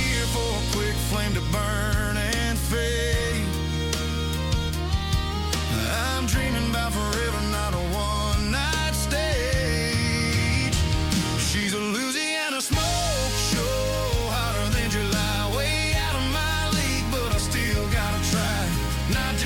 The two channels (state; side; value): identical; both; correlation 1.00